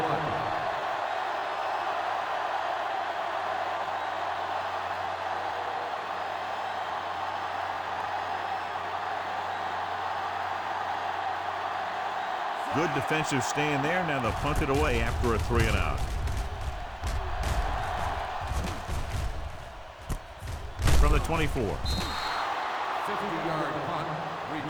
Good defensive stand there. Now they'll punt it away after a 3-and-out. From the 24. 50-yard punt,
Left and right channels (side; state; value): both; identical; correlation 1.00